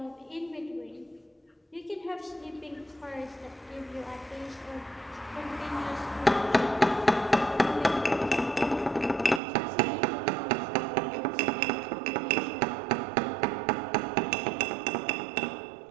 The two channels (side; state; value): left; drops out; at 9.4 s